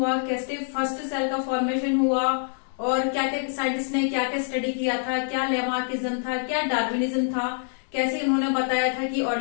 कैसे फर्स्ट सेल का फॉर्मेशन हुआ और क्या क्या साइंटिस्ट ने क्या क्या स्टडी किया था, क्या लेमार्किज्म था, क्या डार्विनिज्म था, कैसे इन्होंने बताया था कि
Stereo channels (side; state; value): right; silent; digital silence